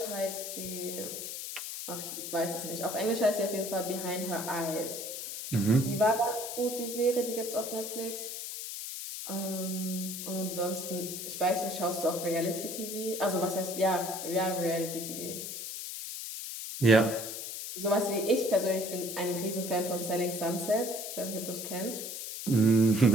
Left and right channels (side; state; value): left; noise; hiss, 7 dB below the sound